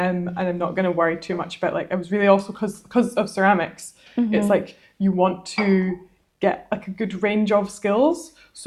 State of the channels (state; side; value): identical; both; correlation 1.00